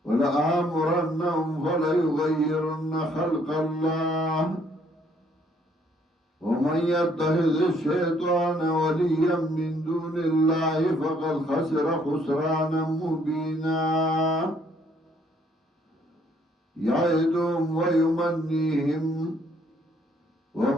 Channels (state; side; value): normal; both; correlation 0.65